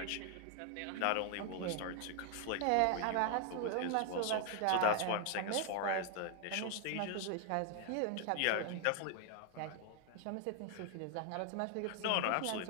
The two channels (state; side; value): different; both; correlation 0.00